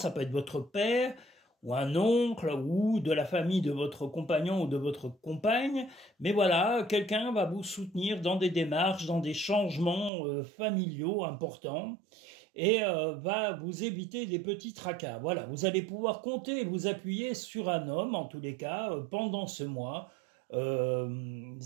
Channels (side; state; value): left; drops out; at 10.1 s